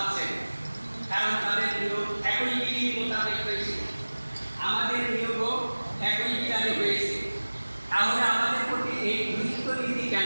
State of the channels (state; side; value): inverted; both; correlation -1.00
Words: কারণ তাদের নিয়োগ একই বিধি মোতাবেক হয়েছে। আমাদের নিয়োগও একই বিধানে হয়েছে। তাহলে আমাদের প্রতি এই গুরুত্ব নীতি